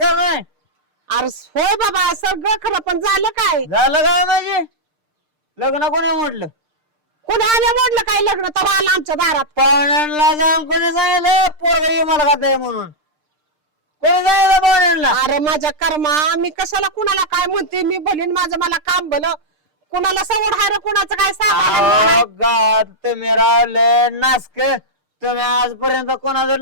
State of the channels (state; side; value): late; left; 6.6 ms